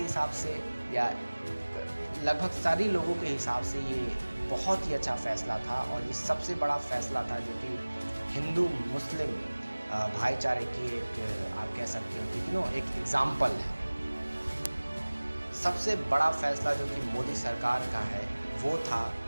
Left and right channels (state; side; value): inverted; both; correlation -1.00